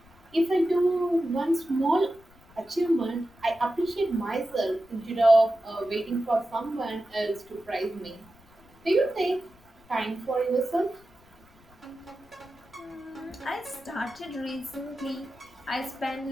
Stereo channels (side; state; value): left; noise; rumble, 28 dB below the sound